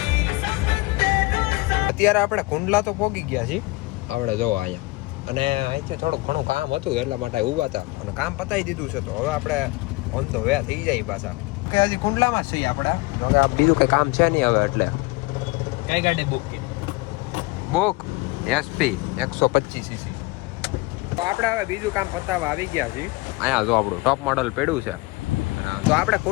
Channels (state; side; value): quieter; right; 23.1 dB